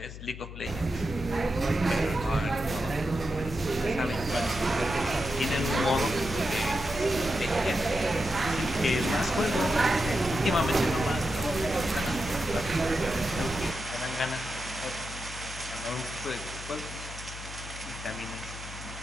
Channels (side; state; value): left; noise; hum, 11 dB below the sound